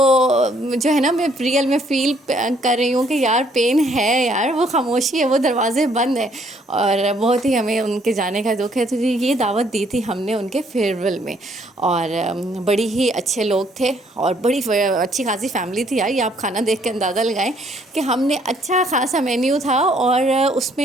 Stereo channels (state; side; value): normal; both; correlation 0.66